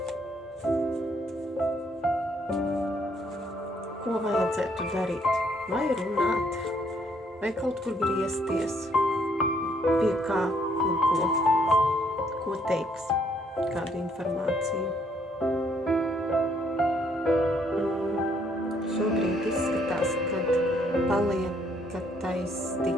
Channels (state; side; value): normal; both; correlation 0.68